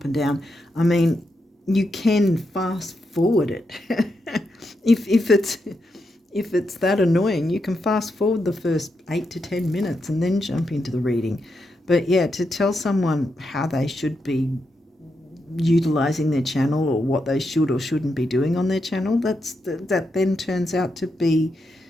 and down, I mean, you can fast forward it. if it's that annoying, you can fast forward the first 8 to 10 minutes and then jump into the reading. But yeah, to tell someone how they should be utilizing their channel, or what they should or shouldn't be doing on their channel, that then turns out to be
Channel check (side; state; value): both; normal; correlation 0.84